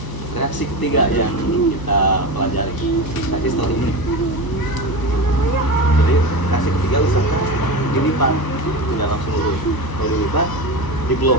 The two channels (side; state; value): right; late; 1.0 ms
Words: reaksi ketiga yang kita pelajari tadi setelah ini. Jadi reaksi ketiga usahakan dilipat, tidak langsung lurus. Kalau dilipat,